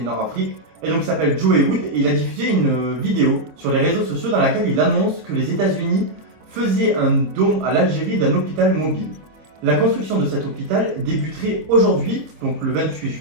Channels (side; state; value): left; late; 26 ms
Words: Et donc il s'appelle Joe Wood et il a diffusé une vidéo sur les réseaux sociaux dans laquelle il annonce que les États-Unis faisaient un don à l'Algérie d'un hôpital mobile. La construction de cet hôpital débuterait aujourd'hui, donc le 28